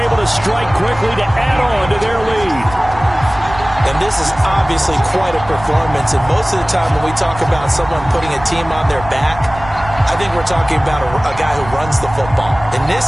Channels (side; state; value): right; noise; rumble, 15 dB below the sound